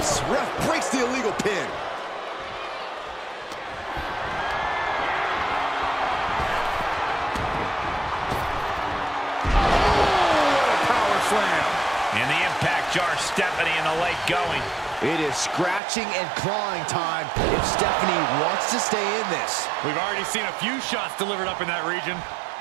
ref breaks the illegal pin. And the impact jars Stephanie in the leg going. It is scratching and clawing time if Stephanie wants to stay in this. We've already seen a few shots delivered up in that region.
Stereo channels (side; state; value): left; drops out; at 15.8 s